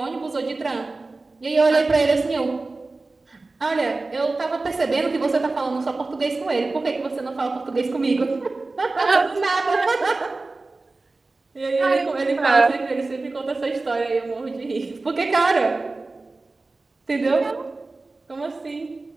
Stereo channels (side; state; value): left; quieter; 3.4 dB